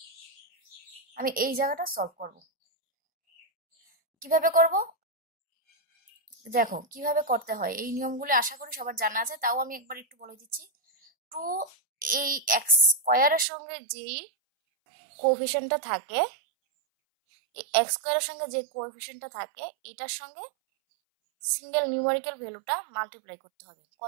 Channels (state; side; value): drops out; left; at 13.5 s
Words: আমি এই জায়গাটা সলভ করব। কিভাবে করব দেখো, কিভাবে করতে হয় এই নিয়মগুলো আশা করি সবার জানা আছে, তাও আমি একবার একটু বলে দিচ্ছি। 2 এই x² সঙ্গে যেই কোএফিসিয়েন্টটা থাকে, এই x² সঙ্গে যে কোএফিসিয়েন্টটা থাকে এটার সঙ্গে সিঙ্গেল নিউমেরিক্যাল ভ্যালুটা মাল্টিপ্লাই করতে হবে।